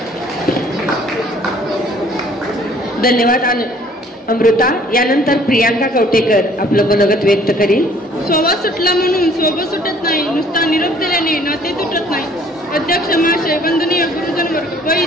धन्यवाद अमृता. यानंतर प्रियांका कवटेकर आपलं मनोगत व्यक्त करील. स्वभाव सुटला म्हणून सोबत सुटत नाही, नुसता निरोप दिल्याने नाते तुटत नाही. अध्यक्ष महाशय, वंदनीय गुरुजन वर्ग व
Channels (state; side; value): normal; both; correlation 0.57